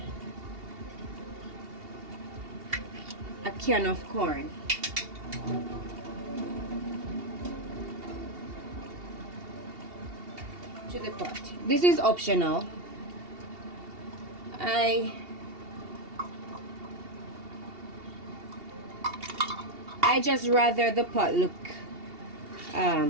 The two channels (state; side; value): late; left; 2.8 ms